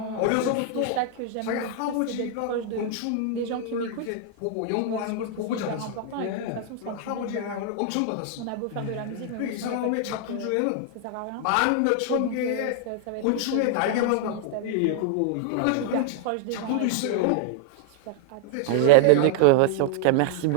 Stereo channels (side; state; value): both; different; correlation -0.01